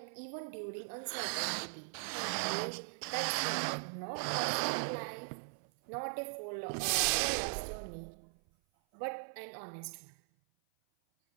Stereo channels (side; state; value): left; silent; 52 dB below the other